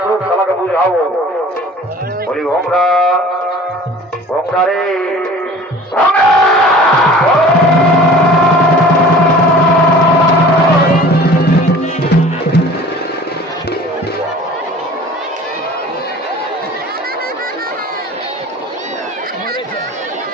খেলাকে বুঝাবো। বলি ভোমরা ভোমরা রে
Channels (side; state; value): both; normal; correlation 0.46